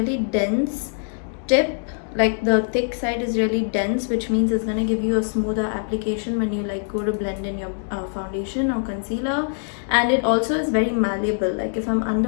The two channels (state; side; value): silent; right; digital silence